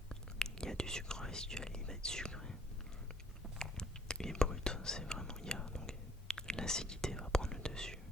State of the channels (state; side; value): normal; both; correlation 0.59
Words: il y a du sucre résiduel, il va être sucré. Et brut, c'est vraiment, donc l'acidité va prendre le dessus,